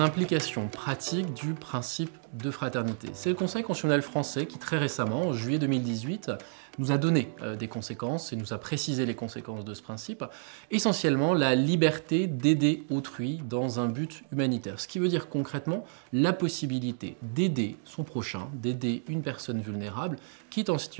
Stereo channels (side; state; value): left; silent; digital silence